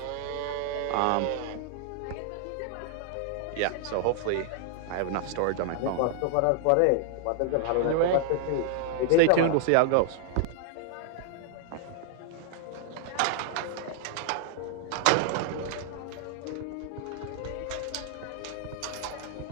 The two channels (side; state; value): both; different; correlation 0.00